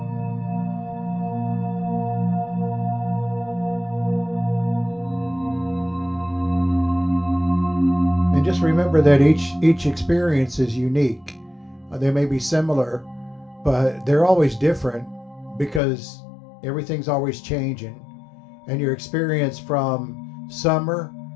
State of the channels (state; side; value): drops out; right; at 15.8 s